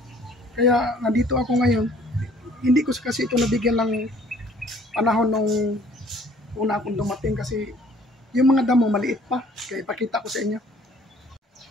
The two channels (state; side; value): normal; both; correlation 0.56